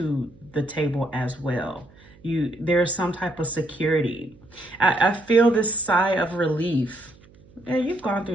the table as well. There's some type of security. I feel this sigh of relief. Yeah, you've gone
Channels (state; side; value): noise; right; hum, 26 dB below the sound